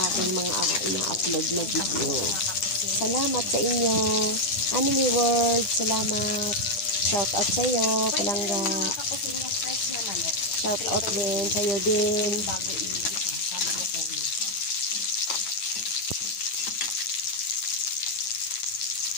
aking mga ina-upload na video. Salamat sa inyo. Anime World, salamat. Shout out sa iyo, Palangga. Shout out din sa iyo din.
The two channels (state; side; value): late; right; 10 ms